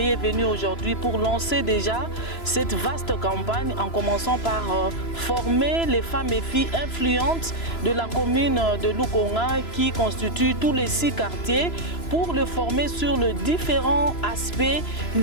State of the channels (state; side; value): late; right; 3.0 ms